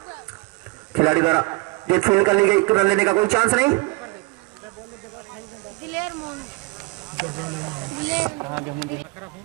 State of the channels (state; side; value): quieter; left; 25.7 dB